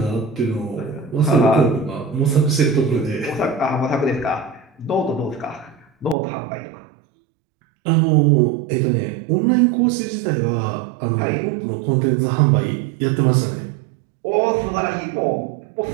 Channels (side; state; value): left; drops out; at 6.2 s